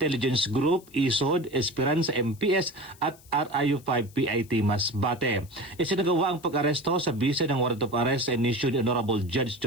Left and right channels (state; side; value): noise; left; hiss, 25 dB below the sound